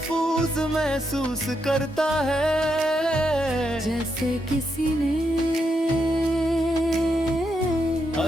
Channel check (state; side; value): normal; both; correlation 0.82